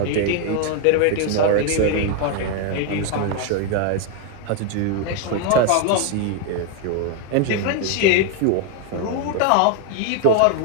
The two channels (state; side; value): different; both; correlation 0.01